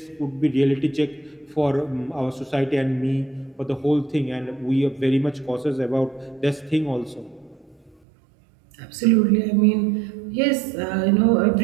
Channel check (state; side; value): drops out; left; at 8.0 s